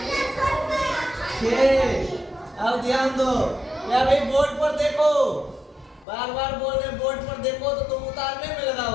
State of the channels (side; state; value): right; drops out; at 6.1 s